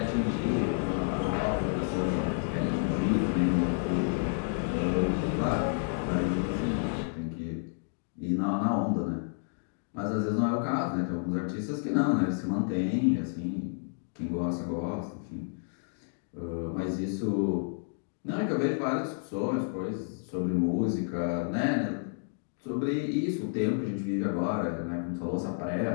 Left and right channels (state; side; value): silent; right; 58 dB below the other